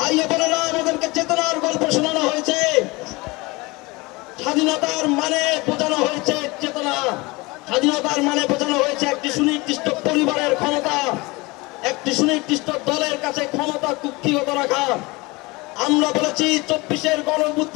বোনেরা, আমাদেরকে চেতনার গল্প শোনানো হয়েছে। স্বাধীনতার মানে বোঝানো হয়েছে চেতনা, স্বাধীনতার মানে বোঝানো হয়েছে একটি সুনির্দিষ্ট পরিবারের ক্ষমতা, একটি সুনির্দিষ্ট দলের কাছে ক্ষমতা কুক্ষিগত রাখা। আমরা বলেছি 24-এর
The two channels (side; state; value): right; quieter; 23.9 dB